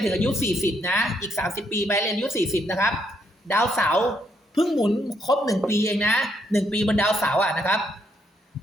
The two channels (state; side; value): normal; both; correlation 0.74